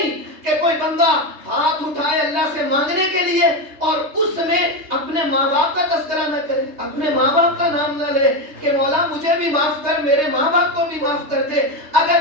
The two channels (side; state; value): left; late; 3.2 ms